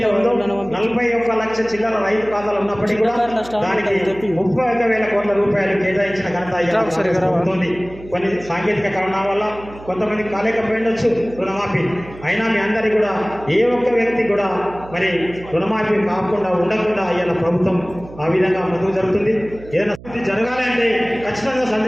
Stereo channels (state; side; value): noise; right; hum, 18 dB below the sound